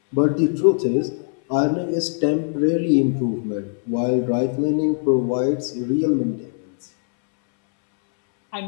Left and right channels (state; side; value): silent; right; 63 dB below the other